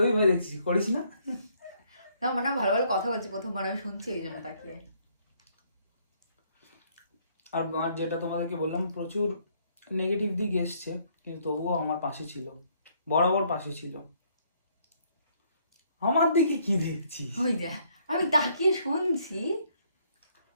ওই ভাই দেখছিস, করিস না? না মানে ভালো ভালো কথা বলছি, প্রথমবার আমি শুনছি এই জন্য তাকিয়ে। আর যেটা তোমাদেরকে বললাম, প্রচুর নেগেটিভ দিক এসছে, কিন্তু তবুও আমার পাশে ছিল, বরাবর পাশে ছিল। আমার দিকে কি দেখছি? ওই দেখ আমি তাকিয়ে শুনছি।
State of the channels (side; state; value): both; inverted; correlation -0.67